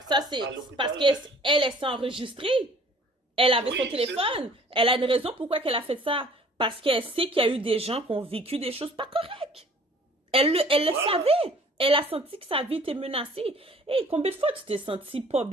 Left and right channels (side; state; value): both; normal; correlation 0.53